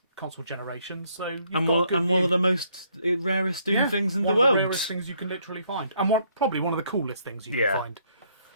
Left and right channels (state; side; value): inverted; both; correlation -0.69